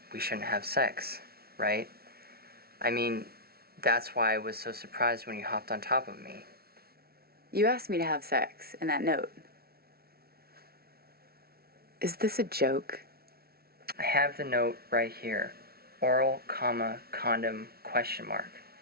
we shouldn't have sex, right? I mean, that's why I was so surprised when you hopped on top of me. You asked me to have sex in that note. Is this a joke? I have the note right here. Oral, comma, condom, question mark.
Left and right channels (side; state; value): left; late; 0.45 ms